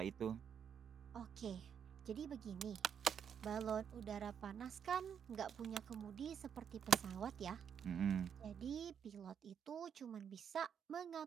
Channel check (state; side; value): quieter; left; 7.8 dB